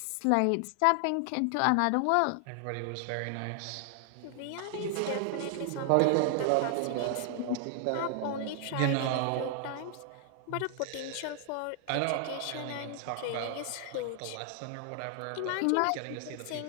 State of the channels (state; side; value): different; both; correlation 0.00